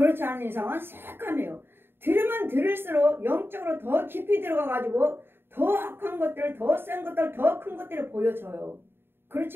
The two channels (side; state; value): left; late; 0.11 ms